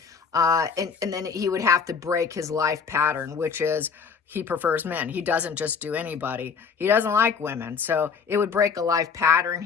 And then he would have to break his life pattern, which is he prefers men. He doesn't just do anybody. He doesn't like women. So it would break a life pattern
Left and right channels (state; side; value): quieter; right; 5.9 dB